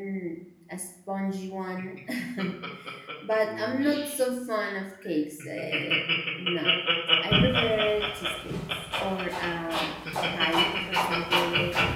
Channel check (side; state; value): both; identical; correlation 1.00